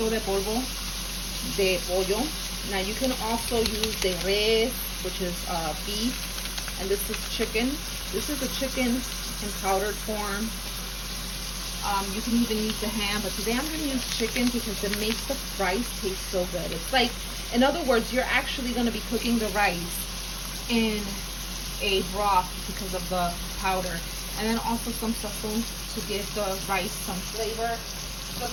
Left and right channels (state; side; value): identical; both; correlation 1.00